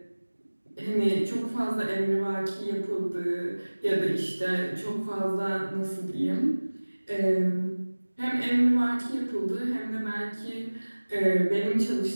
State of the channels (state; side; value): inverted; both; correlation -1.00